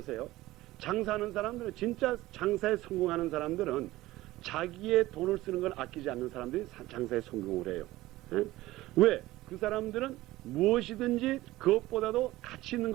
장사하는 사람들은 진짜 장사에 성공하는 사람들은 자기의 돈을 쓰는 걸 아끼지 않는 사람들이 장사에 성공을 해요. 왜? 그 사람들은 무엇이든지 그것보다도 가치 있는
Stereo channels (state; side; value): quieter; left; 17.3 dB